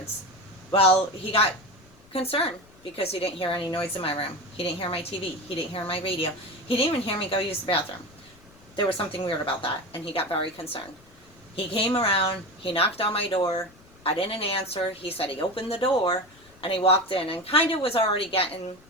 Well, he got concerned because he didn't hear any noise in my room. He didn't hear my TV. He didn't hear my radio. He didn't even hear me go use the bathroom. there was something weird about that, and he got very concerned. He came around, he knocked on my door, I didn't answer, he said he opened the door, and he walked in, and kind of was already getting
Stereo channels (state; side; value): noise; left; rumble, 27 dB below the sound